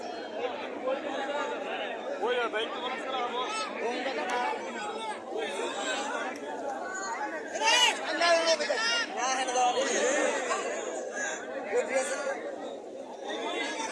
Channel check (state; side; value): identical; both; correlation 1.00